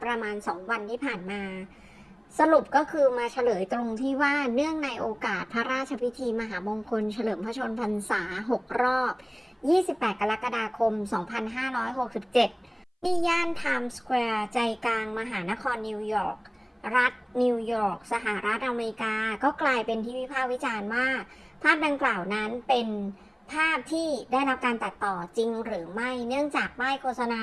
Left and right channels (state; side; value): identical; both; correlation 1.00